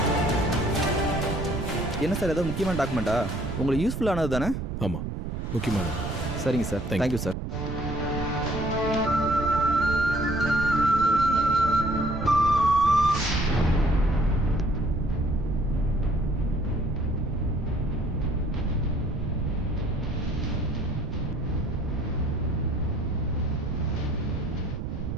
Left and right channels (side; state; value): right; noise; rumble, 4 dB below the sound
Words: என்ன சார், ஏதோ முக்கியமான டாக்குமெண்ட்டா? உங்களுக்கு யூஸ்ஃபுல்லானது தானே? ஆமாம், முக்கியமானது. சரிங்க சார், தேங்க்யூ சார்.